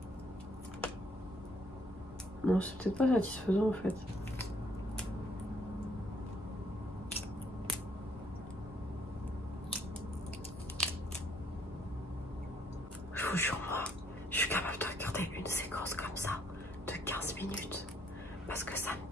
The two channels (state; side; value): normal; both; correlation 0.67